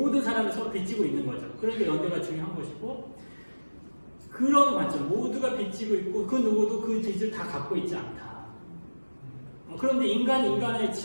사람이 서로 빚지고 있는 거죠. 그러니까 연대가 중요한 것이고 그런 관점 모두가 빚지고 있고 그 누구도 그 빚을 다 갖고 있지 않다. 그런데 인간의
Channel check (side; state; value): both; inverted; correlation -1.00